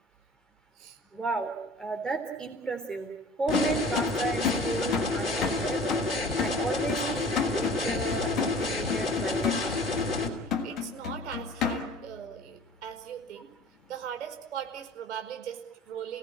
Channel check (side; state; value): both; normal; correlation 0.45